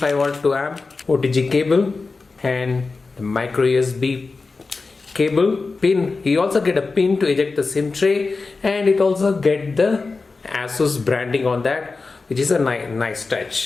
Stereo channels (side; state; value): right; quieter; 4.0 dB